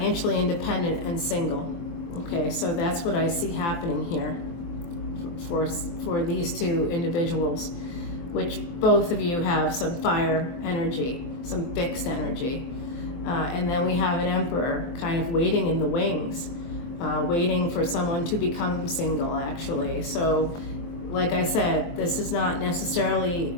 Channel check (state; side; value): late; right; 23 ms